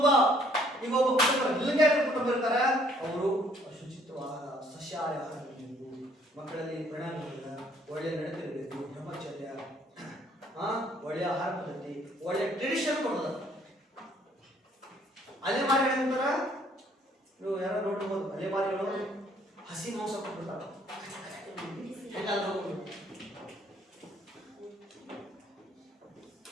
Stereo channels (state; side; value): normal; both; correlation 0.63